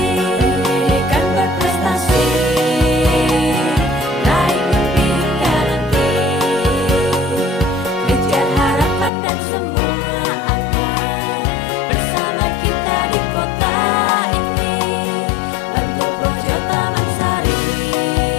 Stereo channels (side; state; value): right; drops out; at 9.1 s